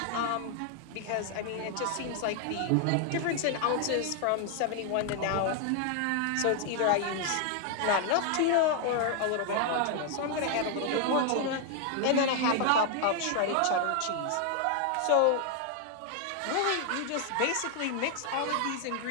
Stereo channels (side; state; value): both; different; correlation 0.00